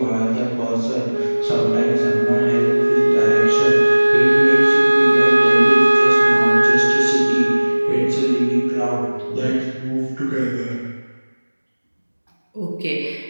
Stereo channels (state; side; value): inverted; both; correlation -1.00